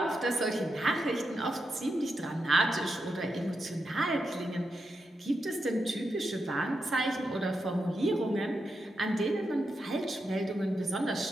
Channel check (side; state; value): both; normal; correlation 0.86